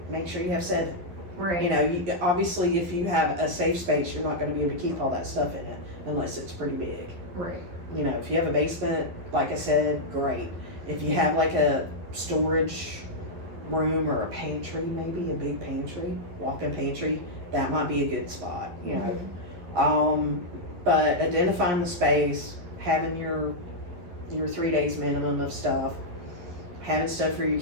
make sure you have 7. Right. You know, obviously if you have a safe space, you're not going to be able to keep all that stuff in it unless it's pretty big. Right. You know, if you have a basement, like I said, great. If you have like a storage room or a pantry, maybe a big pantry, walk-in pantry, that might be a good spot, you know. But identifying the space, having your 3 days minimum of stuff, having stuff for your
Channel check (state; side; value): late; left; 11 ms